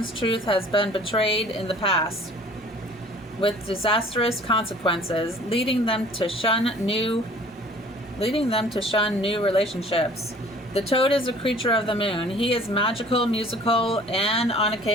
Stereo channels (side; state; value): both; normal; correlation 0.50